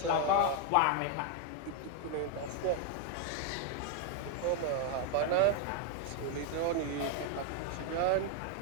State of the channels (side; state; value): both; different; correlation 0.01